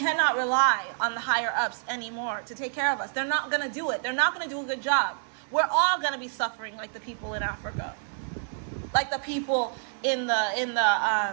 rely on the higher ups anymore to take care of us. They're not going to do it. They're not going to do a good job. We're all going to be suffering like the people in Africa, like the people in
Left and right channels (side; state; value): left; silent; digital silence